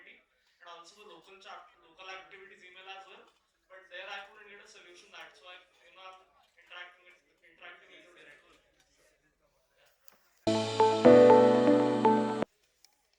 and also the local activities email as well. But there I couldn't get a solution. That's why I'm interacting with you directly.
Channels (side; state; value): both; identical; correlation 1.00